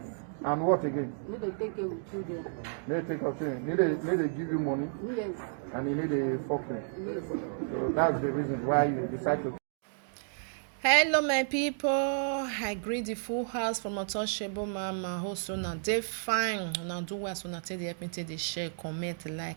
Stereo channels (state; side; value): silent; left; digital silence